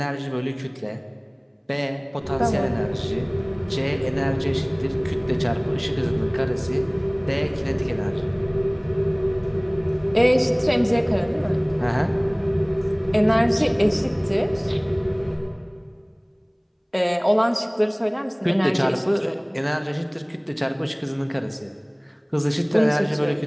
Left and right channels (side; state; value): both; identical; correlation 1.00